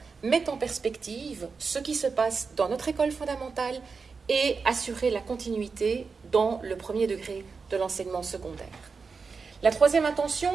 met en perspective ce qui se passe dans notre école fondamentale et assurer la continuité dans le premier degré de l'enseignement secondaire. La troisième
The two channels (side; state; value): left; quieter; 4.9 dB